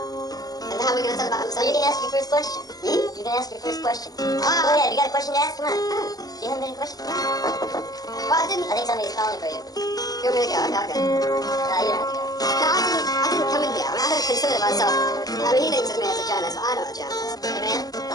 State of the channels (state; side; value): late; right; 0.18 ms